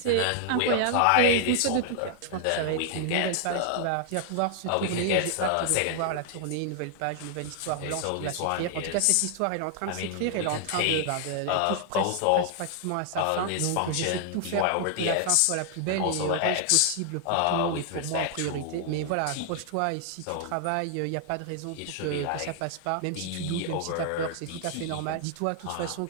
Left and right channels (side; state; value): both; different; correlation 0.00